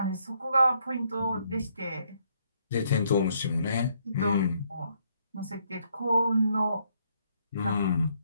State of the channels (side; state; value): both; inverted; correlation -0.71